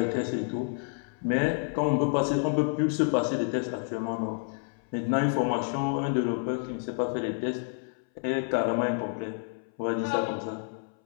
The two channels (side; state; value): right; silent; 58 dB below the other